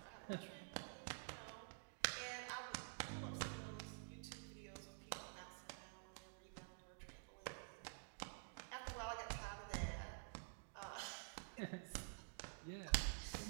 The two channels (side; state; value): left; silent; digital silence